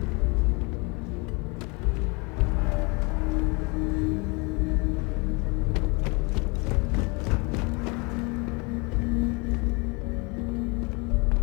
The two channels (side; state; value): right; quieter; 29.2 dB